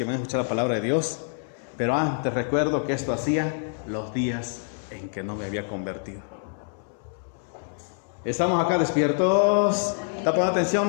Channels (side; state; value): right; silent; 61 dB below the other